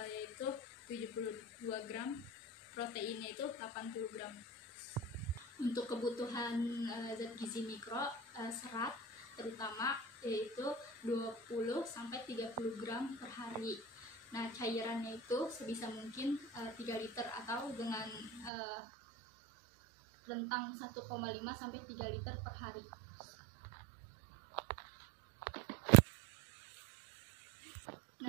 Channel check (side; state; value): left; drops out; at 18.5 s